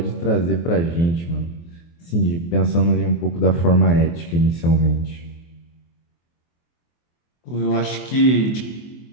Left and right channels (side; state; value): right; late; 24 ms